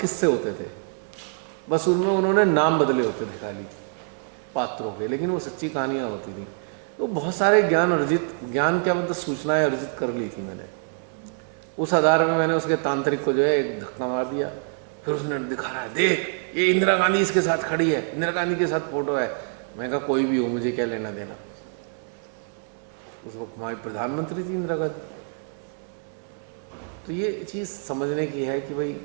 होते थे, बस उनमें उन्होंने नाम बदले होते थे खाली पात्रों के, लेकिन वो सच्ची कहानियाँ होती थी। तो बहुत सारे ज्ञान क्या मतलब सूचनाएं अर्जित कर ली थी मैंने। उस आधार में मैंने उसके तांत्रिक को जो है एक धक्का मार दिया। फिर उसने दिखा रहा है, देख ये इंदिरा गांधी इसके साथ खड़ी है, इंदिरा गांधी के साथ फोटो है। मैं कहा कोई भी हो, मुझे क्या लेना देना। उस वक्त हमारी प्रधानमंत्री थी इंदिरा गांधी। तो ये चीज़ समझने की है कि भाई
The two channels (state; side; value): silent; left; 57 dB below the other